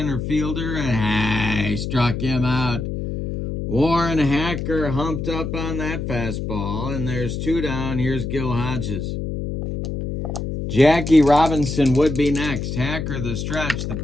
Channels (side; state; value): left; noise; hum, 4 dB below the sound